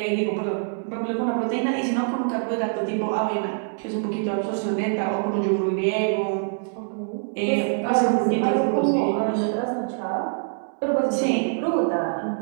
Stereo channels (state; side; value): silent; left; 62 dB below the other